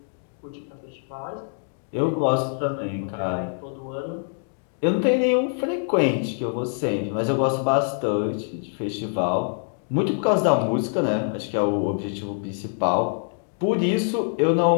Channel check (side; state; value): right; silent; 62 dB below the other